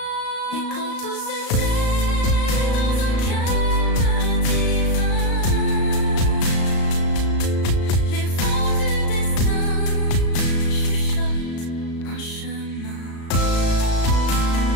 Et quand tout se tait dans un calme divin, les vents du destin chuchotent un chemin.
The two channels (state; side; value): late; right; 35 ms